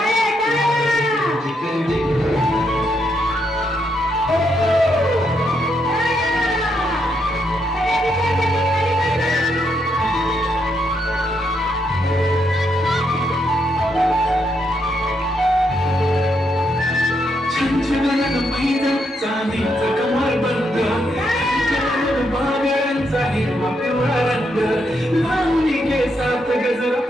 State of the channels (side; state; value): both; normal; correlation 0.78